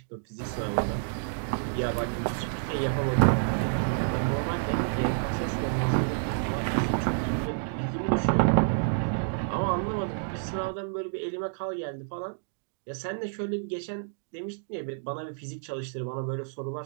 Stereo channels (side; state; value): left; silent; digital silence